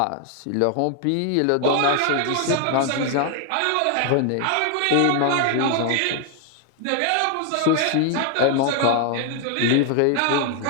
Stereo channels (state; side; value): different; both; correlation 0.00